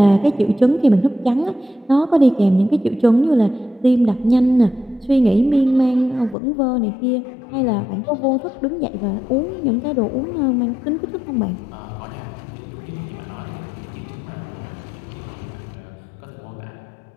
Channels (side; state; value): right; drops out; at 6.4 s